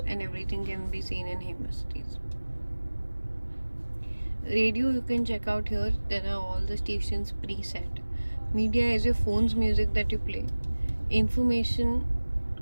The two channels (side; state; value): both; inverted; correlation -1.00